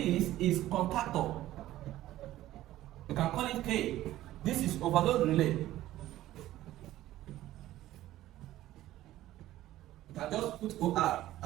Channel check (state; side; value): quieter; left; 14.7 dB